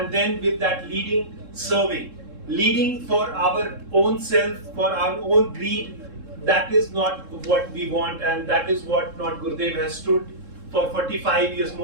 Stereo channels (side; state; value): left; late; 3.7 ms